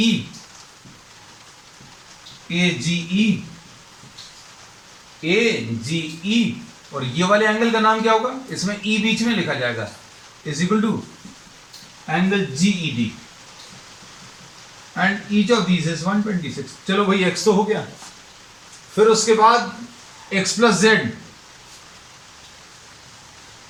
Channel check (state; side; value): identical; both; correlation 1.00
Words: और ये वाले एंगल का नाम क्या होगा, इसमें E बीच में लिखा जाएगा, is equal to angle GED, and each of these is 126। चलो भाई x तो हो गया, फिर उसके बाद x plus Z,